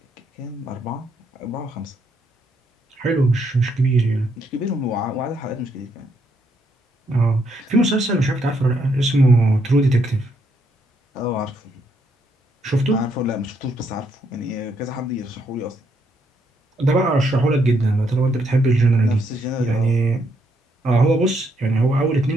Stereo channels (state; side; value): normal; both; correlation 0.74